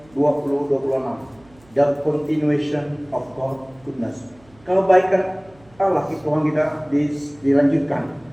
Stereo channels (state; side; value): noise; right; hum, 29 dB below the sound